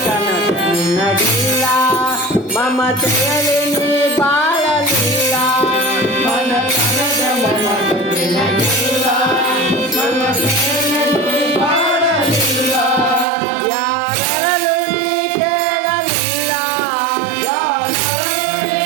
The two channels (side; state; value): left; drops out; at 13.2 s